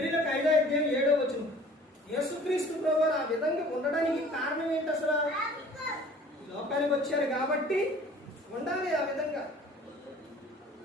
5:7 యేసుక్రీస్తు ప్రభువారు ఆ విధంగా ఉండడానికి కారణం ఏంటి? అసలు లోకానికి వచ్చారు కాబట్టి ఉండాలి ఆ విధంగా.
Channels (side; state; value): both; normal; correlation 0.49